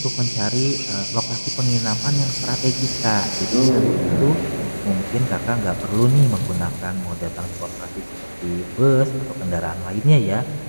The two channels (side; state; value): both; inverted; correlation -1.00